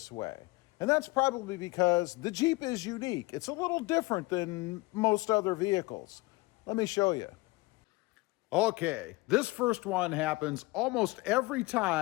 way. And that's probably because the Jeep is unique. It's a little different than most other vehicles. Let me show you. Okay, this first one happens almost every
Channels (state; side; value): quieter; right; 22.7 dB